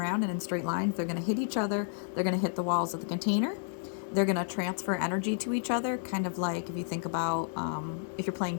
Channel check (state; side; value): silent; right; digital silence